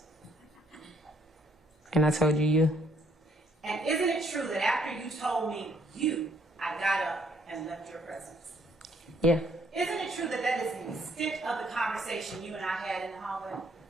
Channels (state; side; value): normal; both; correlation 0.67